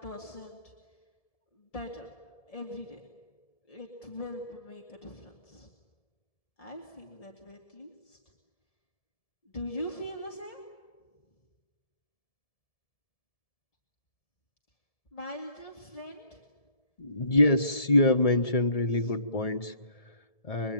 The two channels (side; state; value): right; late; 1.7 ms